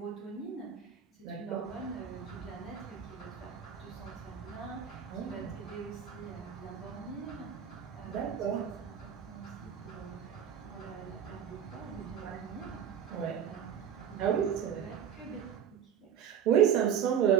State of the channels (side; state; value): left; quieter; 8.5 dB